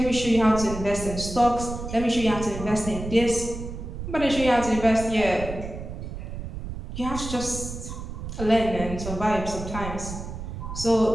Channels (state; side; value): noise; right; rumble, 8 dB below the sound